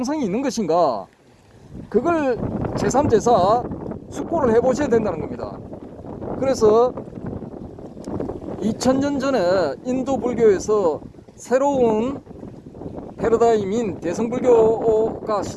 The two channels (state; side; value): identical; both; correlation 1.00